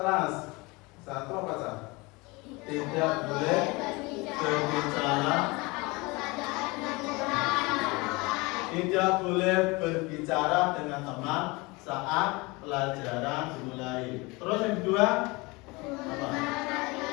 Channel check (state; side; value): quieter; right; 24.9 dB